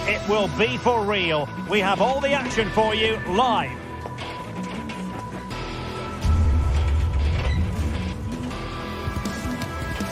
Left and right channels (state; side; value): identical; both; correlation 1.00